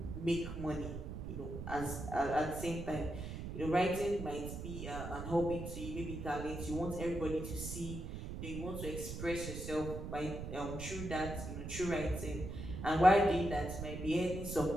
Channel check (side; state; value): right; noise; rumble, 7 dB below the sound